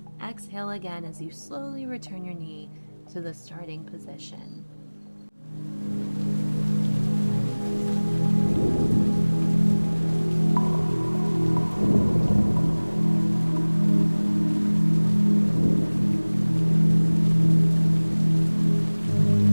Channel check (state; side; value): inverted; both; correlation -1.00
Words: exhale again as you slowly return your knee to the starting position.